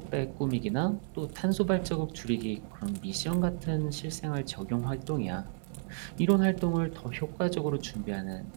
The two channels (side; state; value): left; silent; 56 dB below the other